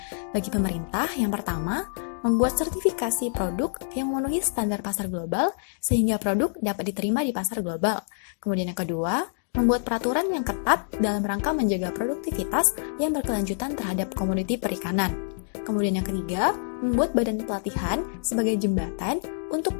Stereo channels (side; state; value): right; silent; digital silence